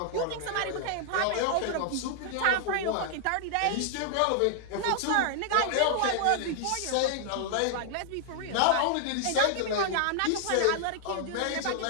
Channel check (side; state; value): both; different; correlation -0.01